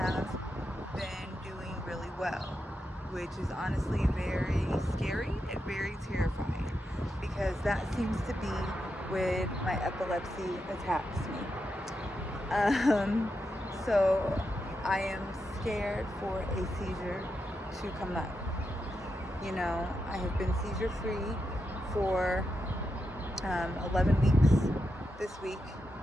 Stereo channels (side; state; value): both; normal; correlation 0.86